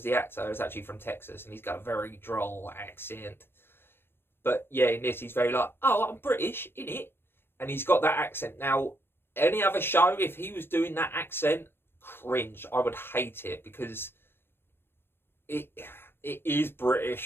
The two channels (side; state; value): right; late; 0.11 ms